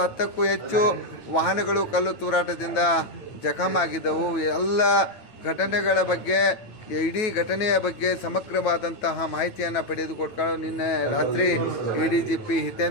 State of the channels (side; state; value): right; late; 9.1 ms